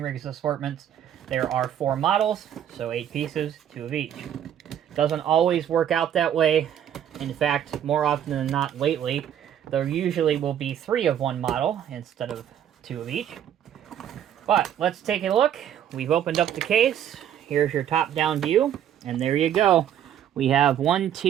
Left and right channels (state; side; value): quieter; left; 10.0 dB